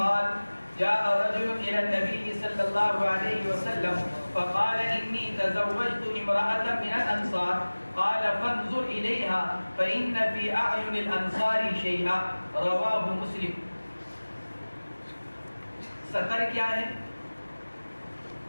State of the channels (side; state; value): both; inverted; correlation -1.00